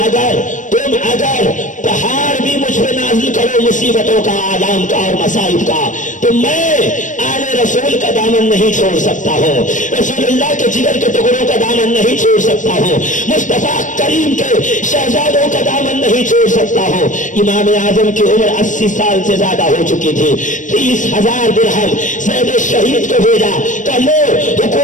पहाड़ भी मुझ पे नाजिल करो मुसीबतों का, आलाम का और मसाइब का, तो मैं आले रसूल का दामन नहीं छोड़ सकता हूँ, रसूलुल्लाह के जिगर के टुकड़ों का दामन नहीं छोड़ सकता हूँ, मुस्तफा करीम के शहजादों का दामन नहीं छोड़ सकता हूँ। इमाम आजम की उम्र 80 साल से ज्यादा हो चुकी थी। 30,000 दिरहम सैयद शहीद को भेजा, कहा लो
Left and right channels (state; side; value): late; right; 0.37 ms